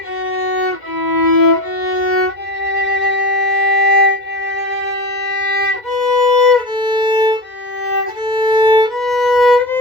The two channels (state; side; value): late; right; 2.1 ms